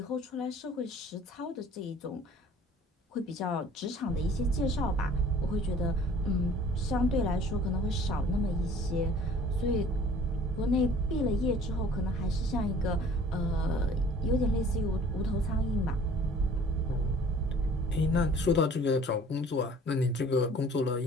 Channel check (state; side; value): normal; both; correlation 0.51